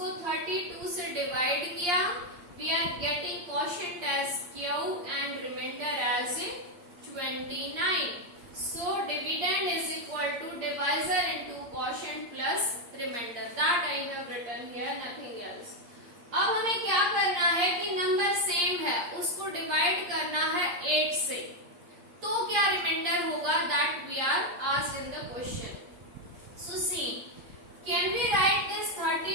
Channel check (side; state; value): left; late; 8.5 ms